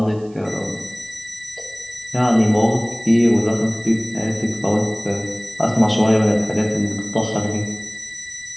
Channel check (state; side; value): noise; right; hiss, 29 dB below the sound